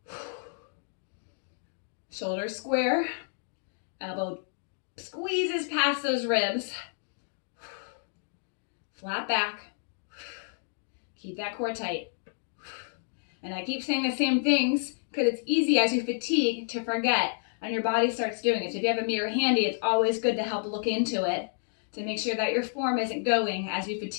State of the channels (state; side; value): silent; right; digital silence